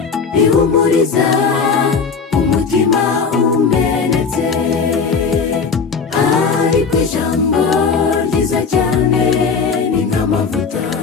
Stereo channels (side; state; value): right; quieter; 5.3 dB